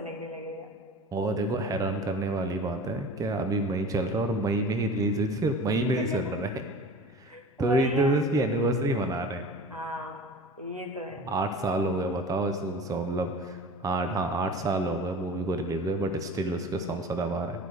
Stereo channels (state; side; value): normal; both; correlation 0.38